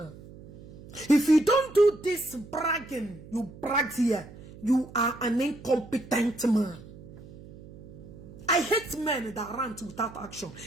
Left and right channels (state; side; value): noise; right; hum, 18 dB below the sound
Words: If you don't do this bragging, you brag here, you are an incompetent man. I hate men that rant without action.